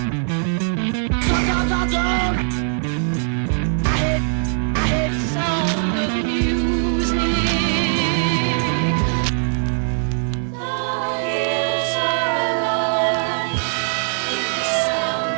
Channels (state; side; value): silent; left; digital silence